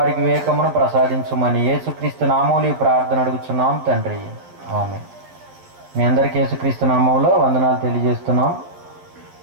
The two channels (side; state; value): left; late; 11 ms